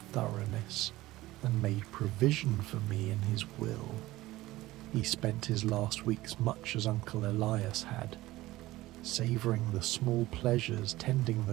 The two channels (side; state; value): left; quieter; 17.5 dB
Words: thoroughness, and made provision for me in his will. He spent his last weeks much as Uncle Elias had, savouring the small pleasures, tending